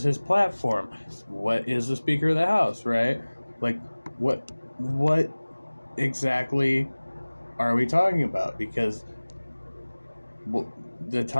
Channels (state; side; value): inverted; both; correlation -1.00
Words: his platform. What is the Speaker of the House, right? Like, what exactly are we talking about? Because the